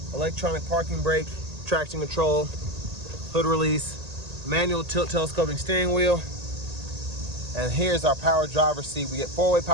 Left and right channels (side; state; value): left; late; 1.8 ms